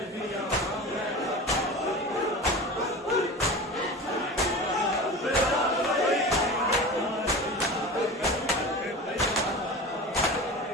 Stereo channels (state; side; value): normal; both; correlation 0.32